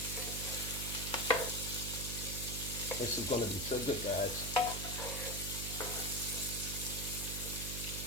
This is going to be so good, guys.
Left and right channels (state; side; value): noise; right; hum, 5 dB below the sound